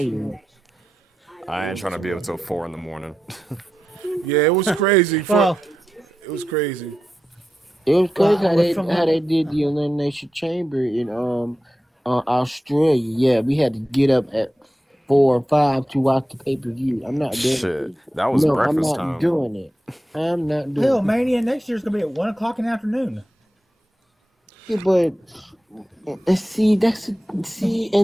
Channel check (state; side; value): normal; both; correlation 0.90